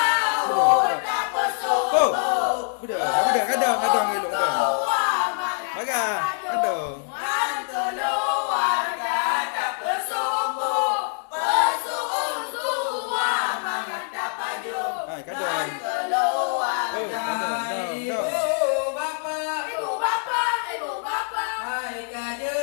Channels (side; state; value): right; silent; 62 dB below the other